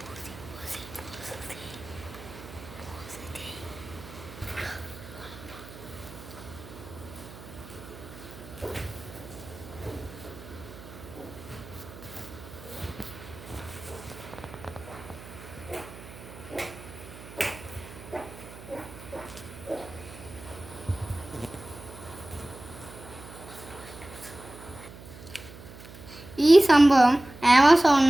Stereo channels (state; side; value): noise; right; hum, 16 dB below the sound